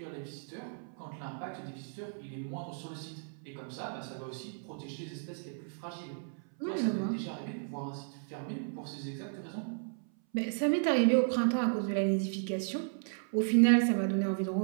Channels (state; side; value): silent; left; 55 dB below the other